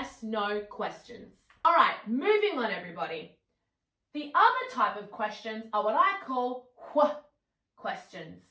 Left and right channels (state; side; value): identical; both; correlation 1.00